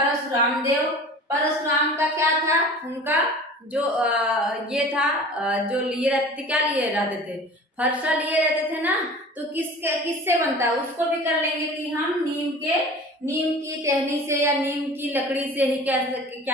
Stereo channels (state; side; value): normal; both; correlation 0.40